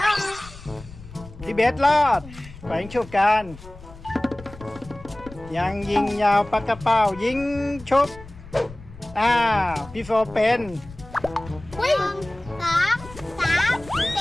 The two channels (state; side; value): noise; left; rumble, 18 dB below the sound